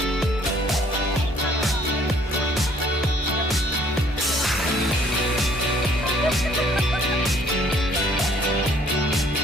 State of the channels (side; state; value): both; normal; correlation 0.60